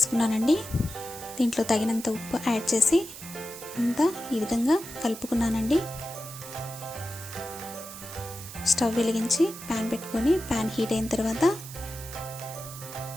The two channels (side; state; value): right; noise; hiss, 13 dB below the sound